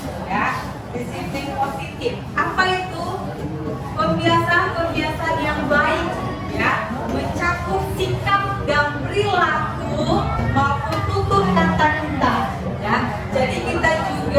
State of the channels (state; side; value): identical; both; correlation 1.00